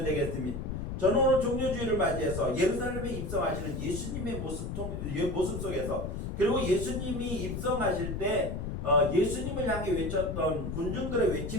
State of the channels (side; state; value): left; noise; rumble, 5 dB below the sound